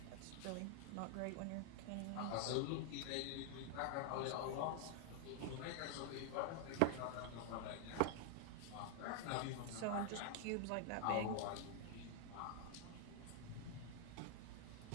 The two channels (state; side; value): different; both; correlation 0.00